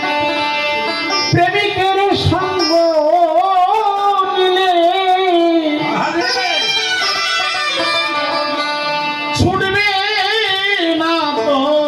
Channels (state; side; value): identical; both; correlation 1.00